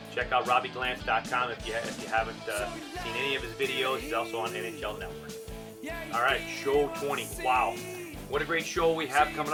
check out RobbieGlantz.com if you haven't seen any of his videos. He's also on NHL Network. All right, show 20. Wow. What a great show we have coming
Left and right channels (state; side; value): identical; both; correlation 1.00